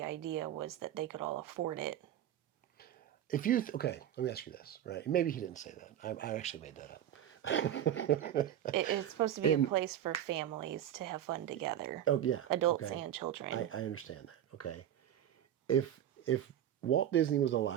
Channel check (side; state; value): left; quieter; 11.0 dB